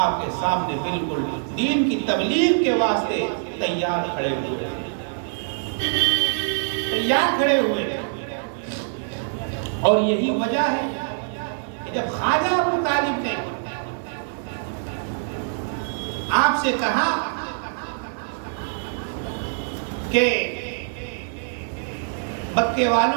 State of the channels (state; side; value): silent; left; digital silence